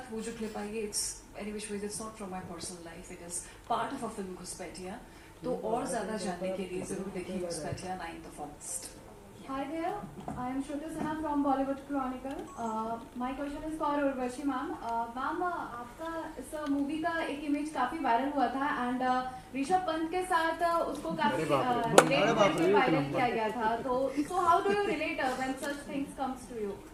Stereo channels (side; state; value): both; identical; correlation 1.00